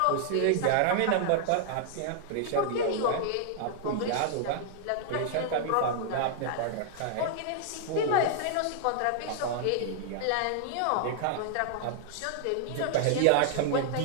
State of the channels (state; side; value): different; both; correlation -0.01